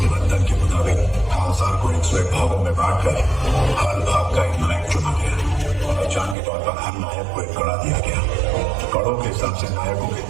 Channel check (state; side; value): drops out; left; at 6.4 s